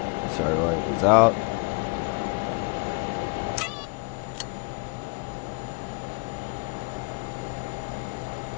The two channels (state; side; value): quieter; right; 31.6 dB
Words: Starter light is out.